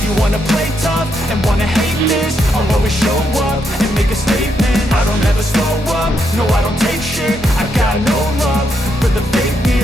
you wanna play tough and wanna hate this, I'll always show up and make a statement. I don't ever slow up, no I don't take shit. I got no love for the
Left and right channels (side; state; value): both; normal; correlation 0.79